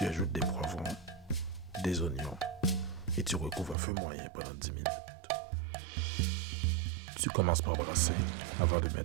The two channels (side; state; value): left; drops out; at 3.8 s